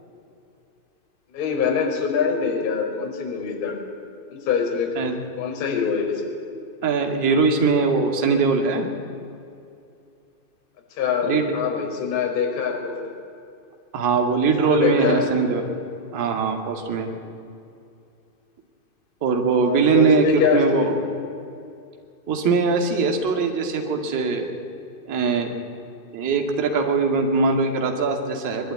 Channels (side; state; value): right; late; 2.5 ms